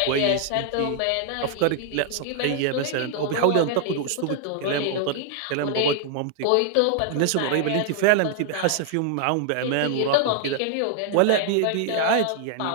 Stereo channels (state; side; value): different; both; correlation 0.00